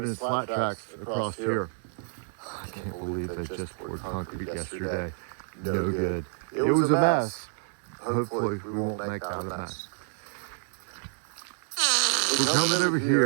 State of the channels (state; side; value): silent; left; digital silence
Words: and slat tracks across here. I can't believe they just poured concrete yesterday. No good. It was a mess. Hopefully we won't make that a mess. We're coming over